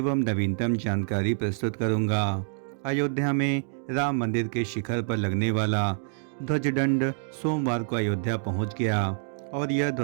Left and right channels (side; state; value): left; silent; digital silence